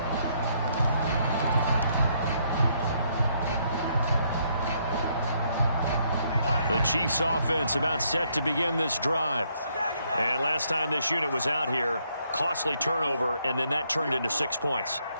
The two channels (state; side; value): inverted; both; correlation -0.72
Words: The Chiefs offense about set to begin this drive. And last time this unit was out here, costly turnover, and then that turned into 6 points.